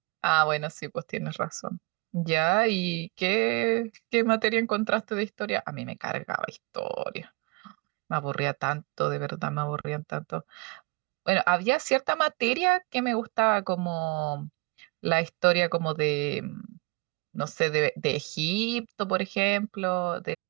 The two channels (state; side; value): quieter; left; 27.5 dB